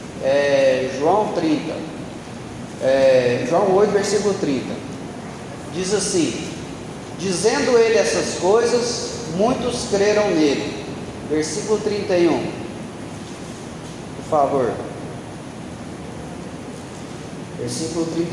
é João 30, João 8, versículo 30. Diz assim: dizendo ele essas coisas, muitos creram nele. Versículo 31, por favor. Versículo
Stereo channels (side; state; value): both; identical; correlation 1.00